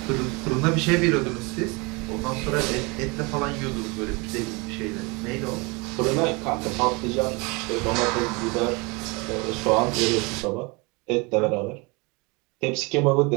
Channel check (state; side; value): quieter; left; 27.8 dB